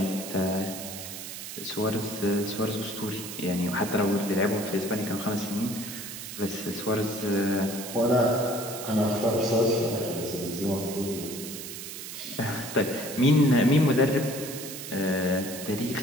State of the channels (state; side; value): noise; right; hiss, 9 dB below the sound